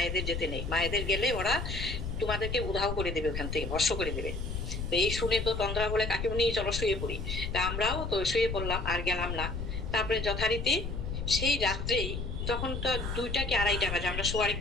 যেতে নেই, মায়েদের গেলে ওরা তোমাদেরকে উধাও করে দেবে, ওখান থেকে ভস্ম করে দেবে। তো এই শুনে তো তন্দ্রা বলে কাকিমুনি চলো শুয়ে পড়ি। তা আমরাও তো শুয়ে পড়লাম, আর গেলাম না। তারপরে যথারীতি সেই রাত্রেই, যখন তো 2টা কি 2:30 বাজে, আমরা শোয়ার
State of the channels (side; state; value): left; noise; rumble, 4 dB below the sound